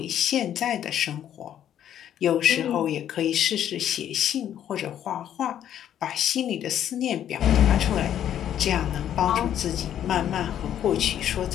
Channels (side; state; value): right; quieter; 10.4 dB